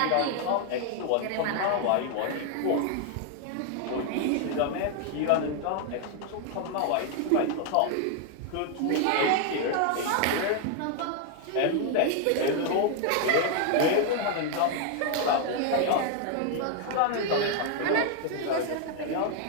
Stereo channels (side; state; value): both; different; correlation 0.00